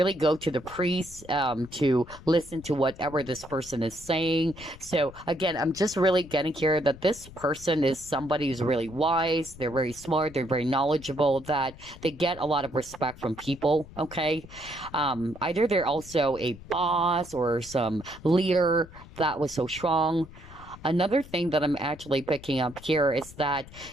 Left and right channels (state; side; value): noise; left; rumble, 18 dB below the sound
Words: go to the priest to listen to whatever this person is saying. So again, I'm just really getting here that this person is somebody who's really wise. They're very smart. They're very knowledgeable. That they get a lot of respect from people. Okay, either they're also a boss or some leader that was so strong. Another thing that I'm actually picking up here is that,